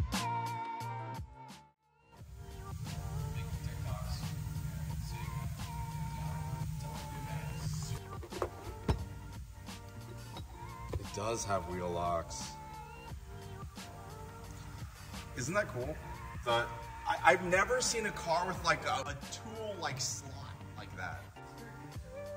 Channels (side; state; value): both; identical; correlation 1.00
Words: It does have wheel locks. Isn't that cool? I've never seen a car with like a tool like slot like that.